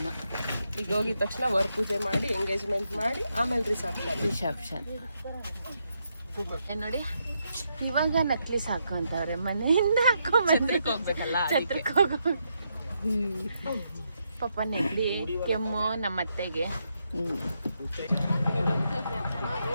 ಈಗ ಹೋಗಿದ ತಕ್ಷಣ ವರ್ ಪೂಜೆ ಮಾಡಿ ಎಂಗೇಜ್ಮೆಂಟ್ ಮಾಡಿ ಆಮೇಲೆ ರಿಸೆಪ್ಷನ್. ನೋಡಿ, ಇವಾಗ ನಕ್ಲಿಸ್ ಹಾಕೊಂತವ್ರೆ, ಮನೆಯಿಂದ ಹಾಕೊಂಡ್ಬಂದ್ರೆ ಛತ್ರಕ್ಕೆ ಹೋಗೋ ಪಾಪ ನೆಗಡಿ ಕೆಮ್ಮು ನಮ್ಮ ಅತ್ತೆಗೆ.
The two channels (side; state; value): both; inverted; correlation -0.81